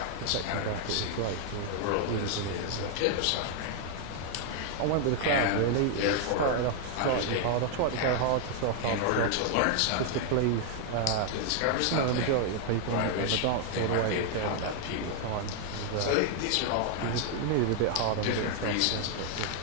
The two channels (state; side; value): different; both; correlation 0.00